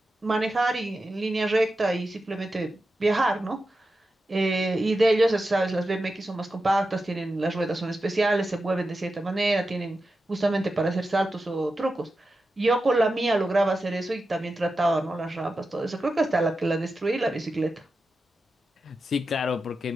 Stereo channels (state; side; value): normal; both; correlation 0.91